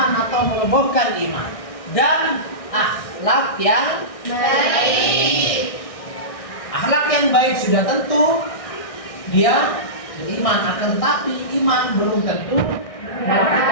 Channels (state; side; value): late; right; 1.6 ms